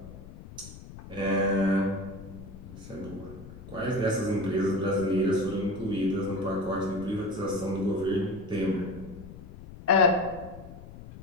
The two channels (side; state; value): left; noise; rumble, 15 dB below the sound